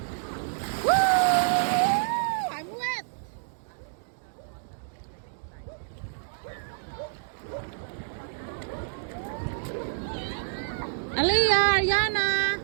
Woo! I'm wet. Aliyah, Ariana.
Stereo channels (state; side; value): silent; left; digital silence